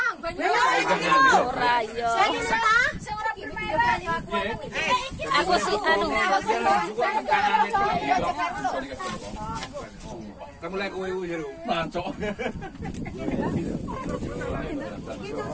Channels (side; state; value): both; identical; correlation 1.00